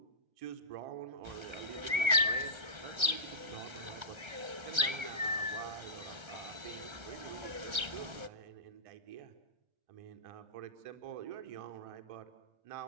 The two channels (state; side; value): late; left; 1.3 ms